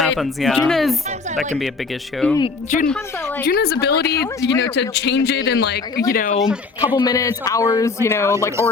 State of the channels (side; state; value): right; quieter; 4.3 dB